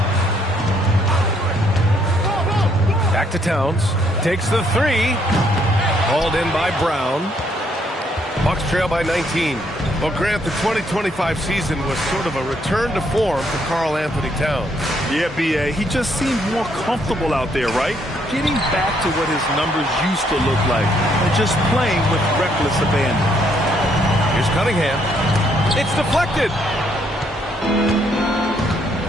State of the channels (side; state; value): both; normal; correlation 0.70